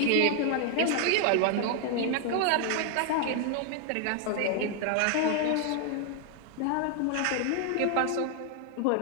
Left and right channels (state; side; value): different; both; correlation 0.00